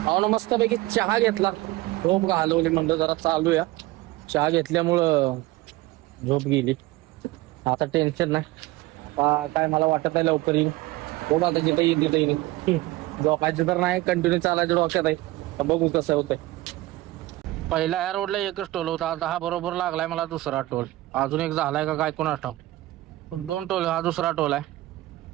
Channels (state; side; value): quieter; left; 18.3 dB